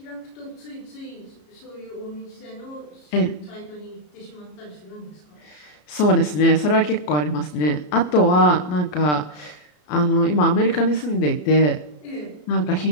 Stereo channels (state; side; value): late; right; 33 ms